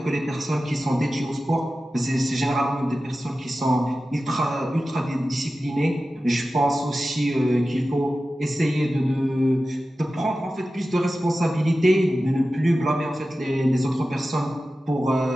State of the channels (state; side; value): normal; both; correlation 0.94